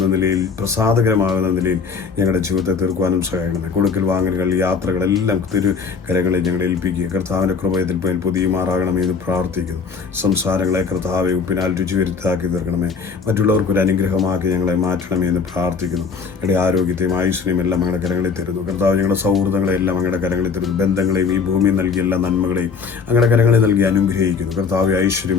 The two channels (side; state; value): right; quieter; 5.4 dB